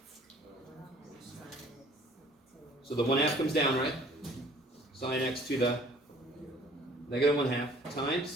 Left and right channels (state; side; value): normal; both; correlation 0.54